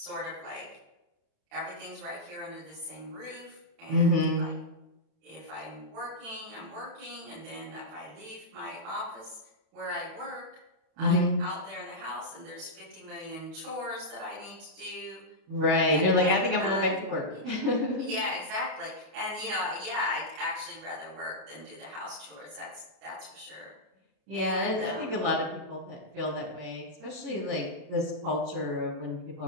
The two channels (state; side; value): late; left; 31 ms